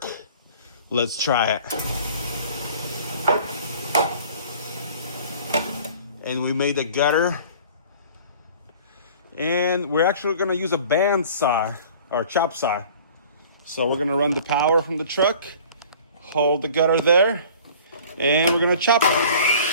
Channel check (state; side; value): inverted; both; correlation -0.47